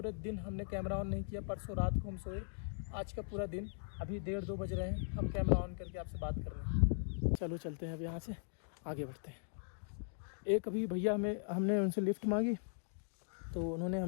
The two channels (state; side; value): silent; right; digital silence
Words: दिन हमने कैमरा ऑन नहीं किया। परसों रात को हम सोए, आज का पूरा दिन, अभी 1:30-2 बज रहे हैं, हम कैमरा ऑन करके आपसे बात कर रहे हैं। चलो चलते हैं अब यहाँ से आगे बढ़ते हैं। एक अभी भैया हमने उनसे लिफ्ट मांगी, तो उन्होंने